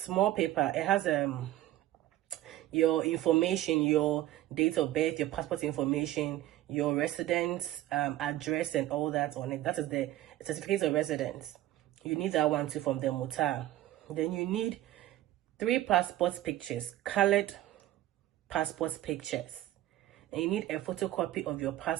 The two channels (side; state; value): left; quieter; 14.7 dB